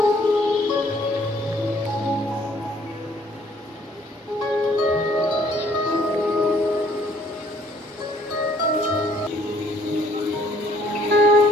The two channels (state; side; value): normal; both; correlation 0.62